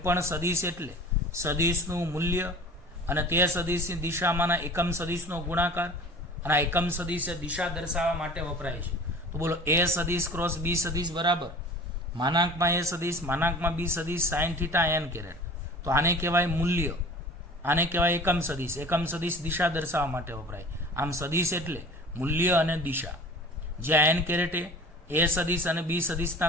સદિશ એટલે સદિશનું મૂલ્ય અને તે સદિશની દિશામાંના એકમ સદિશનો ગુણાકાર, અને આ એકમ સદિશ દિશા દર્શાવવા માટે વપરાય છે. તો બોલો, એ સદિશ ક્રોસ બી સદિશ બરાબર માનાંકમાં એ સદિશ માનાંકમાં બી સદિશ સાઇન થીટા n કેરેટ. તો આને કહેવાય મૂલ્ય, આને કહેવાય એકમ સદિશ. એકમ સદિશ દિશા દર્શાવવા માટે વપરાય. આમ સદિશ એટલે મૂલ્ય અને દિશા. જ્યાં n કેરેટ એ સદિશ અને બી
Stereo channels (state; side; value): normal; both; correlation 0.42